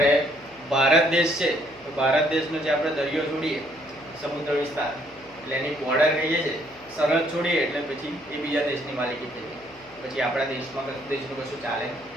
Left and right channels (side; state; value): left; noise; hum, 27 dB below the sound